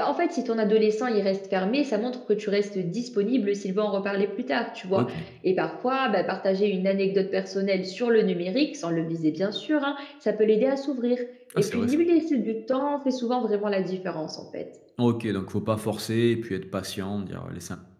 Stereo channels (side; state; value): both; identical; correlation 1.00